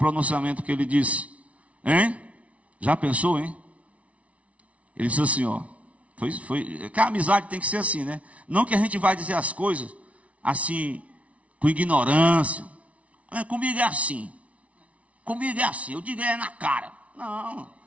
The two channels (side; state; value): left; late; 0.065 ms